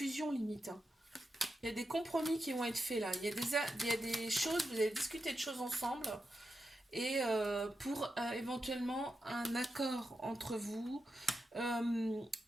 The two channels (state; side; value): normal; both; correlation 0.88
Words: limite, hein. Il y a des compromis qui vont être faits là. Il y a des choses, vous allez discuter de choses ensemble et pour éventuellement un accord entre vous. Il